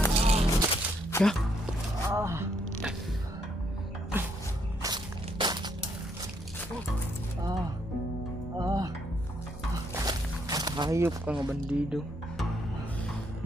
Ya. Hayop ka nga bandido.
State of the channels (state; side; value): normal; both; correlation 0.72